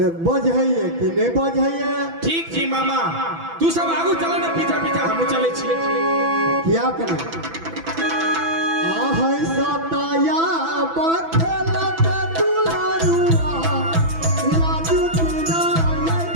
बजैए कि नहीं बजैए। ठीक छी मामा, तू सब आगू चला ना, पीछा पीछा हम चले छिए। क्या करें आहै सताया बखेलत दुलारुआ लाजू किनारे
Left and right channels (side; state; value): left; late; 6.0 ms